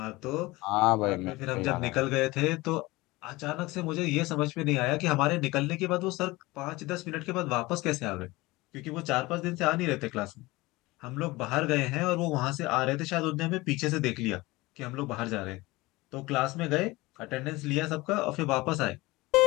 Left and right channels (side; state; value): right; quieter; 21.1 dB